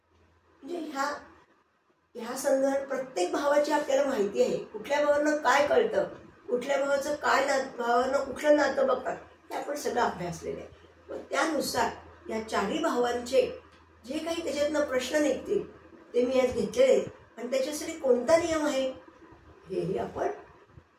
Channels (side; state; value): both; identical; correlation 1.00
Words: म्हणजे ह्या संदर्भात प्रत्येक भावाची आपल्याला माहिती आहे। कुठल्या भावानं काय कळतं, कुठल्या भावाचं काय भावानं कुठलं नातं बघतात हे आपण सगळं अभ्यासलेलं आहे। व त्यानुसार या 4ही भावांचे जे काही त्याच्यातनं प्रश्न निघतील ते मी आज घेतलेले आहेत आणि त्याच्यासाठी कोणता नियम आहे हेही आपण